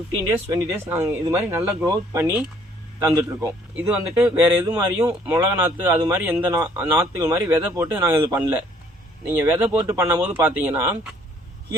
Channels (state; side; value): normal; both; correlation 0.61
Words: days 20 days நாங்கள் இது மாதிரி நல்லா க்ரோத் பண்ணி தந்துட்டுருக்கோம். இது வந்துட்டு வேறு எது மாதிரியும் மிளகா நாற்று அது மாதிரி எந்த நாற்றுகள் மாதிரி விதை போட்டு நாங்கள் இது பண்ணல. நீங்கள் விதை போட்டு பண்ணும்போது பார்த்தீங்கன்னா